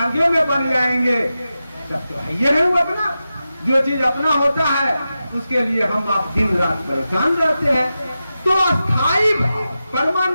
में बन जाएंगे तब तो है ये नहीं अपना। जो चीज अपना होता है उसके लिए हम आप दिन रात परेशान रहते हैं। तो अस्थाई भाव,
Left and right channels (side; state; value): both; inverted; correlation -0.92